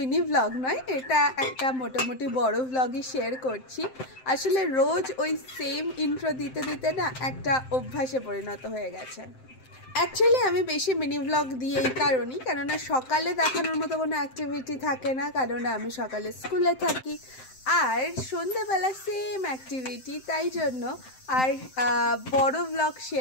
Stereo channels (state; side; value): late; right; 7.7 ms